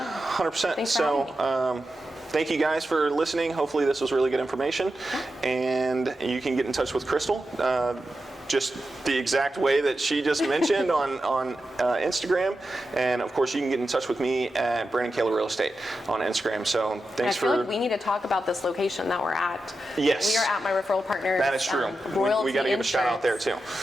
100%. Thanks for having me. Thank you guys for listening. Hopefully this was really good information. And you can get in touch with Crystal. Just the exact way that she just mentioned on Instagram. And of course, you can get in touch with me at Brandon Kaler Real Estate on Instagram. So thanks for. I feel like we need to talk about this location that we're at. Yes. We are at my referral partner. That is true. We got to give a shout out there too.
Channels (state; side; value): normal; both; correlation 0.90